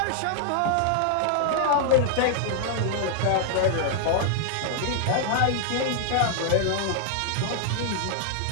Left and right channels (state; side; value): different; both; correlation 0.00